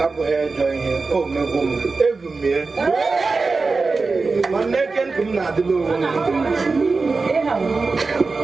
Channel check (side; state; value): left; quieter; 4.0 dB